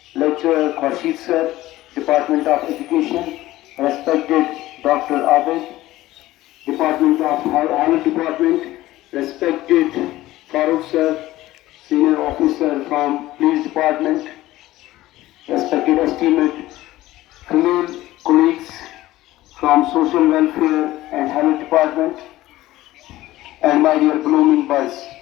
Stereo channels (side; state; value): right; quieter; 16.4 dB